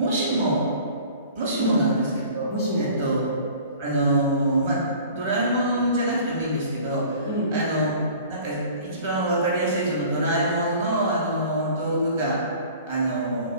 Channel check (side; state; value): both; inverted; correlation -0.47